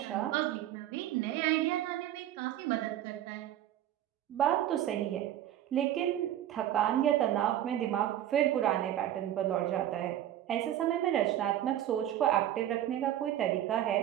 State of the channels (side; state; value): left; quieter; 12.0 dB